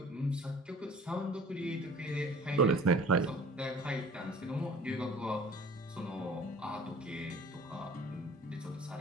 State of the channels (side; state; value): both; normal; correlation 0.48